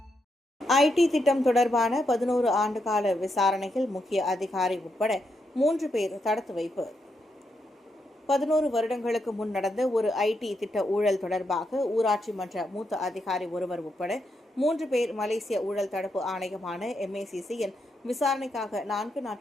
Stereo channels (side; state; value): both; normal; correlation 0.81